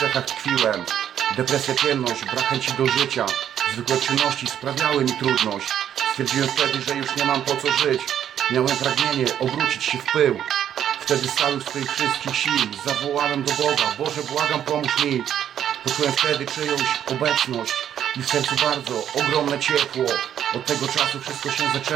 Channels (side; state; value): left; quieter; 9.9 dB